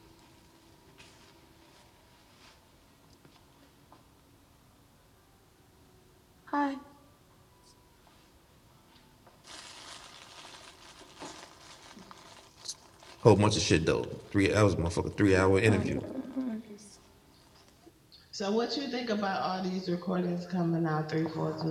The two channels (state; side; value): identical; both; correlation 1.00